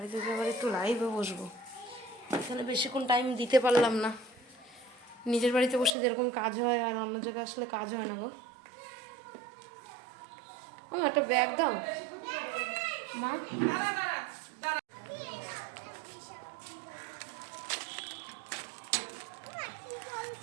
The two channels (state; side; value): drops out; left; at 6.0 s